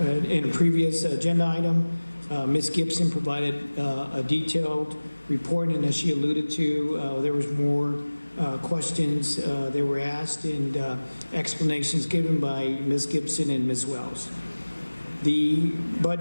in a previous agenda item, Ms. Gibson provided a detailed report, and as she alluded to, there was more questions that were asked and explanations given by Ms. Gibson and Ms. Wells. The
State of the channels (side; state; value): both; inverted; correlation -1.00